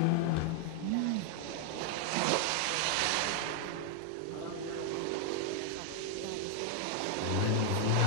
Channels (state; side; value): different; both; correlation 0.00